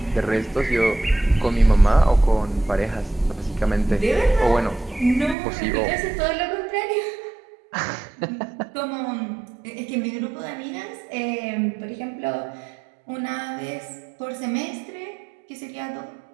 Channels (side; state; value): left; drops out; at 5.4 s